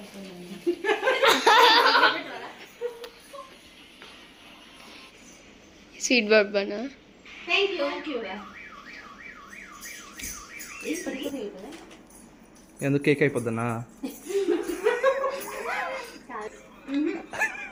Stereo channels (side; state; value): both; identical; correlation 1.00